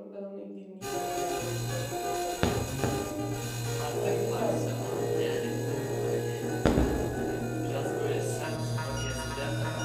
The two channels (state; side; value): identical; both; correlation 1.00